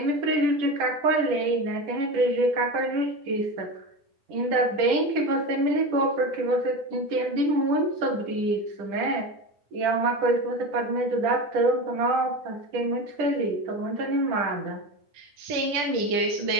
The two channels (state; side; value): late; left; 10 ms